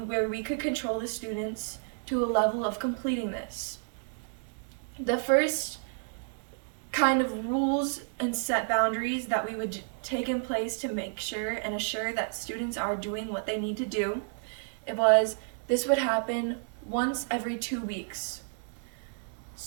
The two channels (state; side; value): silent; left; digital silence